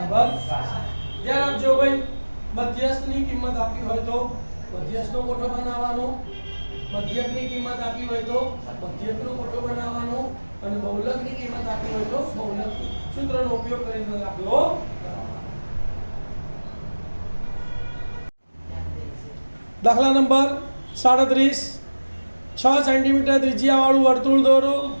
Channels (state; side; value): inverted; both; correlation -1.00